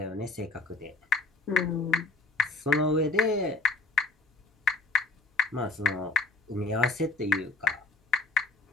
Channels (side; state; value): right; quieter; 3.1 dB